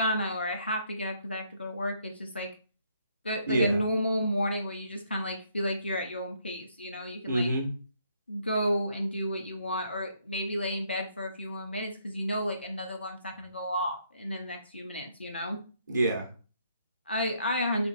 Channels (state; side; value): inverted; both; correlation -0.70